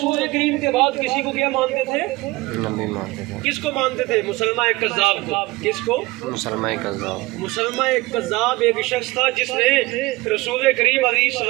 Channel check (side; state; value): left; quieter; 21.4 dB